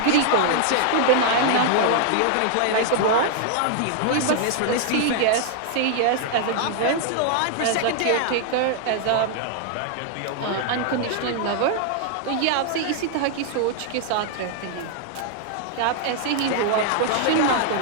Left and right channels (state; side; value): different; both; correlation 0.00